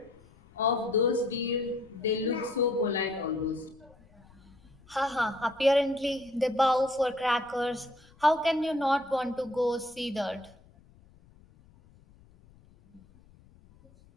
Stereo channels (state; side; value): noise; left; rumble, 27 dB below the sound